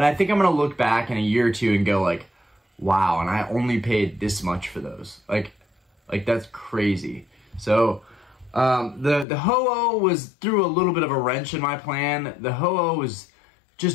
I think I'm going to look back in a year or two and go, like, wow, and I only paid this much for those. Like that's crazy. So, the Ho-Oh threw a little bit of a wrench in my plan. The Ho-Oh was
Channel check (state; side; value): drops out; right; at 9.2 s